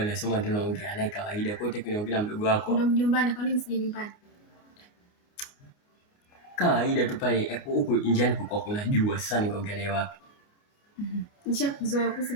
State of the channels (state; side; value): late; right; 29 ms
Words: nasema tunaongea naye kawaida. Kwa hiyo tunaongea na mdogo wako. Ndio mjumbani, kwa nini msije nyumbani? Kawaida tu pale huko njiani kulikuwa kuna jua. Sasa ningeongea naye wapi? Nishakuzoea kuhusu